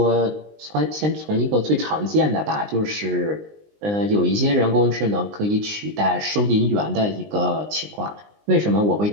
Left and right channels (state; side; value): late; left; 19 ms